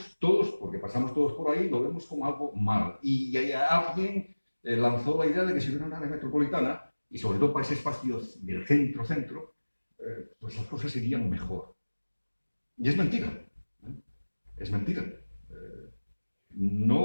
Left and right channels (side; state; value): both; inverted; correlation -1.00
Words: todos, porque pasamos todos por ahí, lo vemos como algo mal. Y alguien lanzó la idea de que si hubiera una área metropolitana, y sobre todo para ese espacio del centro-centro, pues las cosas irían mejor. Y es mentira. Es mentira.